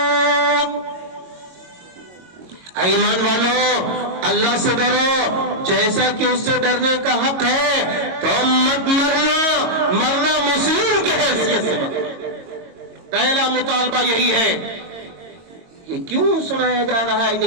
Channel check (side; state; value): left; late; 22 ms